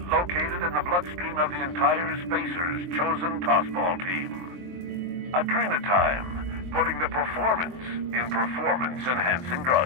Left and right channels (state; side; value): late; left; 23 ms